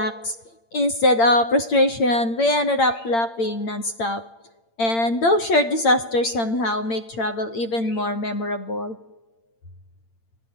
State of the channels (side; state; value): right; late; 8.8 ms